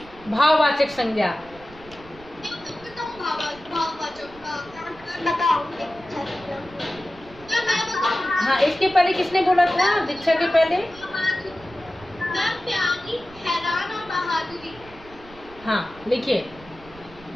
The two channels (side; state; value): right; noise; rumble, 22 dB below the sound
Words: भाववाचक संज्ञा। हाँ, इसके पहले किसने बोला था? दीक्षा के पहले। हाँ, लिखिए